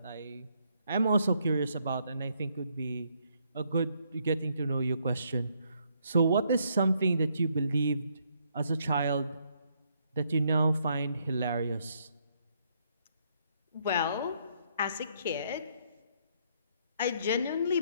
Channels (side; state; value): both; inverted; correlation -0.72